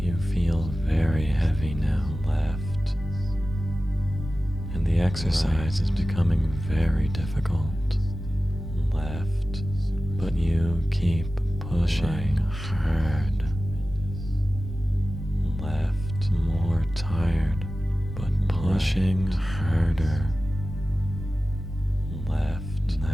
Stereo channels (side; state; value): both; normal; correlation 0.95